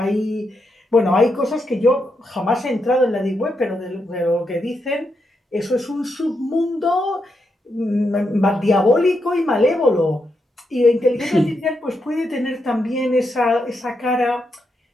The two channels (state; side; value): normal; both; correlation 0.83